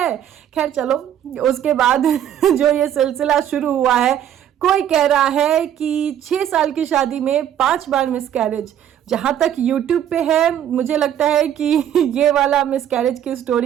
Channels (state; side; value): quieter; left; 10.3 dB